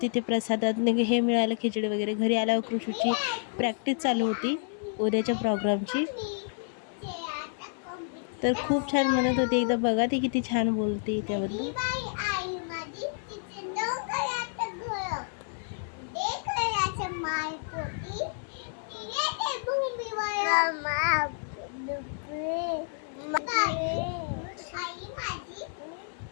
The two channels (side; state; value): right; silent; digital silence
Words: तिथे प्रसादात हे मिळालं, खिचडी वगैरे. घरी आल्यावर कृषूची प्रॅक्टिस चालू होती उद्याच्या प्रोग्रामची. तर खूप छान म्हणत होती. एकदा बघा ती किती छान बोलते त्याबद्दल.